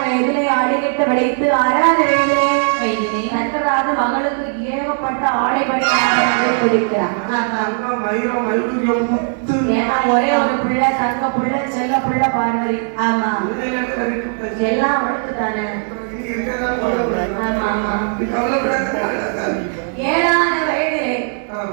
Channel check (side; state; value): left; silent; 58 dB below the other